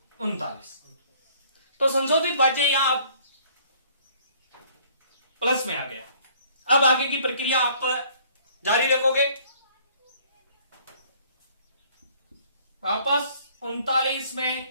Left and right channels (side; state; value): both; inverted; correlation -0.58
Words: 39। तो संशोधित भाज्य यहां प्लस में आ गया। अब आगे की प्रक्रिया आप जारी रखोगे। वापस 39